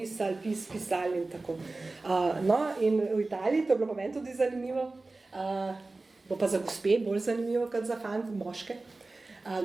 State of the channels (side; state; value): left; quieter; 3.3 dB